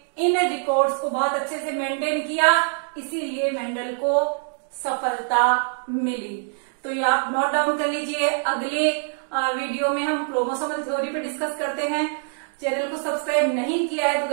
इन रिकॉर्ड्स को बहुत अच्छे से मेंटेन किया, इसीलिए मेंडल को सफलता मिली। तो ये आप नोट डाउन कर लीजिए। अगले वीडियो में हम क्रोमोसोमल थ्योरी पे डिस्कस करते हैं। चैनल को सब्सक्राइब नहीं किया है तो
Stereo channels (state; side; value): silent; left; digital silence